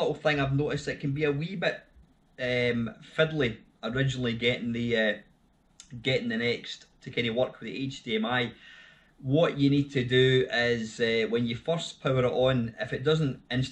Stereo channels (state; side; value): identical; both; correlation 1.00